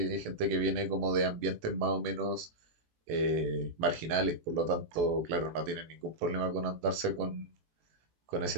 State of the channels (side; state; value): left; late; 18 ms